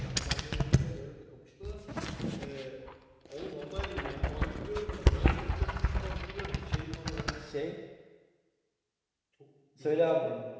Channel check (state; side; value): identical; both; correlation 1.00